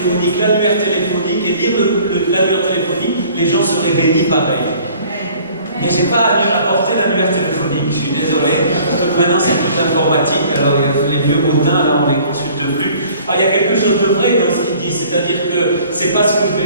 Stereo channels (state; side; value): inverted; both; correlation -0.52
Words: l'annuaire téléphonique, et lire l'annuaire téléphonique, les gens seraient bénis pareil. Mais je n'ai pas apporté l'annuaire téléphonique, je suis désolé, parce que maintenant c'est tout informatique, alors les vieux bottins, là, on ne les consulte plus. Alors, il y a quelque chose de vrai dans ce qu'il dit, c'est-à-dire que ce n'est pas ce que je